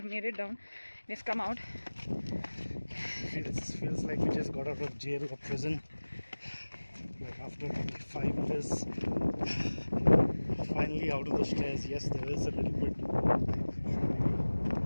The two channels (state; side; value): inverted; both; correlation -1.00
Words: made it down. We've come out. Feels like we just got out of jail or prison. Like after 5 years, finally out of the stairs. Yes, there is a little bit,